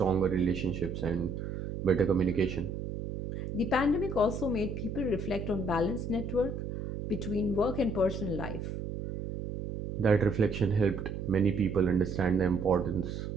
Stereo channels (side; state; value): right; noise; hum, 6 dB below the sound